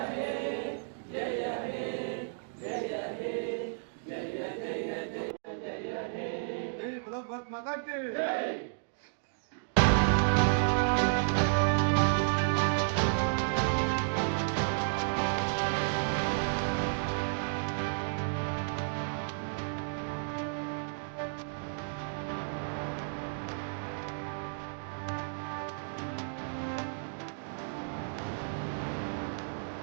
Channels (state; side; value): silent; left; digital silence